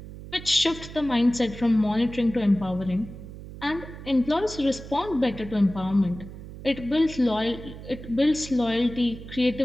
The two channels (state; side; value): noise; right; hum, 13 dB below the sound